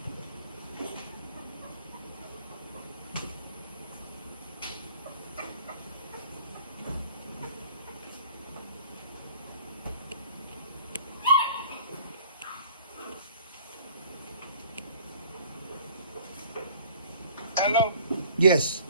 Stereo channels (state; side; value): inverted; both; correlation -0.51